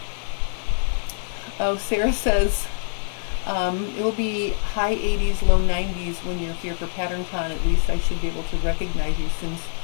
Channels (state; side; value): silent; right; 61 dB below the other